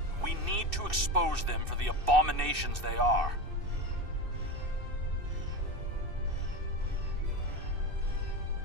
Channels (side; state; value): left; late; 2.6 ms